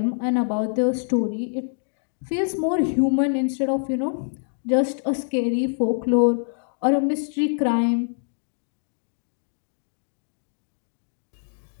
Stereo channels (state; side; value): silent; right; digital silence